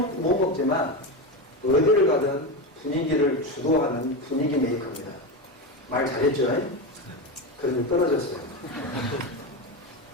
못 먹지만 어디를 가든 분위기를 주도하는 분위기 메이커입니다. 말 잘했죠? 그런데 떨어졌어요.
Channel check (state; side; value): normal; both; correlation 0.17